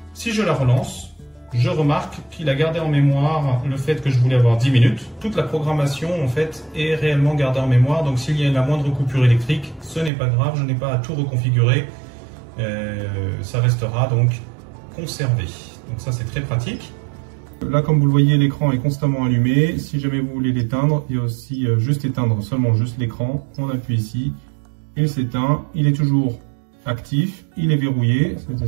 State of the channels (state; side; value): drops out; left; at 10.1 s